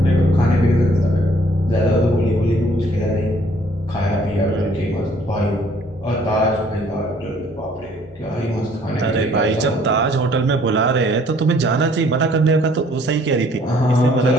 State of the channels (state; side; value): normal; both; correlation 0.60